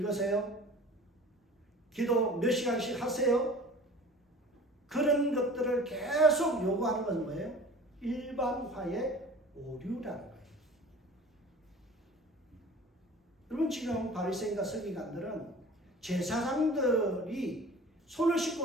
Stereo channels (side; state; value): both; normal; correlation 0.43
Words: 기도 몇 시간씩 하세요? 그런 것들을 계속 요구하는 건 뭐예요? 일반화의 오류라는 거예요. 여러분, 지금 바리새인과 서기관들은 제사장들이 손을